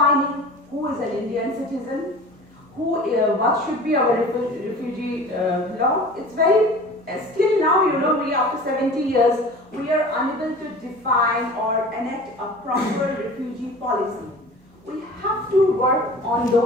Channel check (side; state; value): both; normal; correlation 0.40